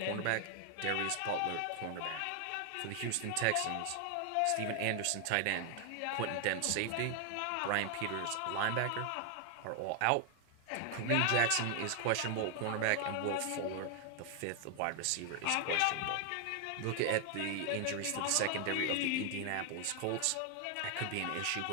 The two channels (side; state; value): both; different; correlation 0.00